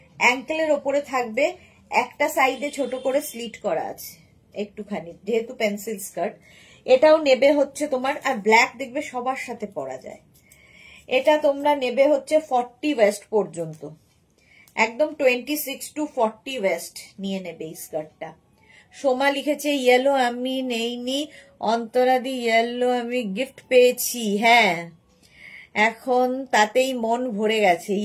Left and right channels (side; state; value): both; identical; correlation 1.00